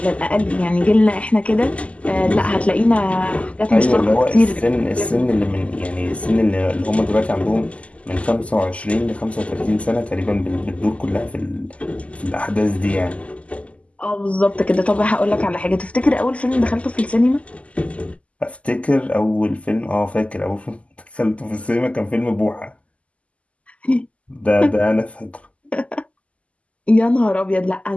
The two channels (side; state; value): right; late; 0.064 ms